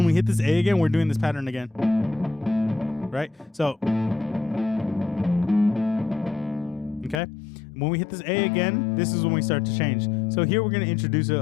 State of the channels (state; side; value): drops out; right; at 7.2 s